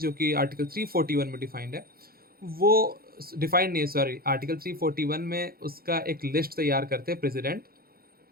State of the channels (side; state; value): left; late; 0.44 ms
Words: कि आर्टिकल 341 में डिफाइंड है, वो डिफाइंड नहीं है, सॉरी, आर्टिकल 341 में उसका एक लिस्ट तैयार करते हैं प्रेसिडेंट।